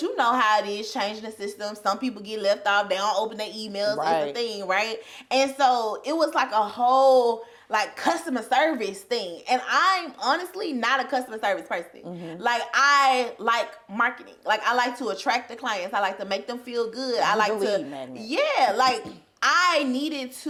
you know how it is changing the system. Some people get left off. They don't open their emails. Right. It's a thing, right? And so it was like a whole like customer service thing, and I'm honestly not a customer service person. Like I like marketing. Like I like to attract the clients. I like to make them feel good. I like to like I needed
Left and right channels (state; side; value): identical; both; correlation 1.00